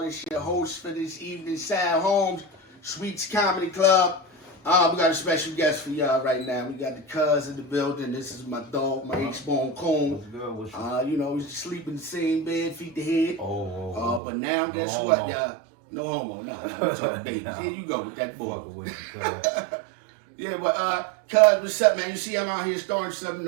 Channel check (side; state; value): left; drops out; at 14.2 s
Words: This your host for this evening, Sam Holmes, Sweetz Comedy Club. We got a special guest for y'all right now. We got the cuz in the building. This is my dog, my H-Bone Coon. What's good? What's good? You know, we sleep in the same bed, feet to head. Oh. But now, guess homo. what, y'all? No homo. Nah, we talking babies. Here you go with that boy. Yeah, but cuz, what's up, man? You see I'm out here starting something